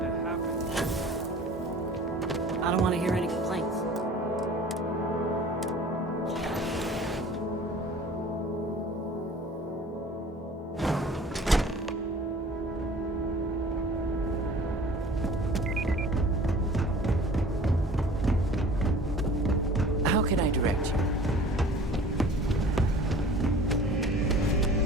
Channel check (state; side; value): normal; both; correlation 0.46